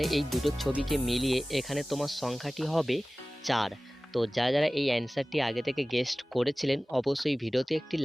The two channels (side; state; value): both; normal; correlation 0.98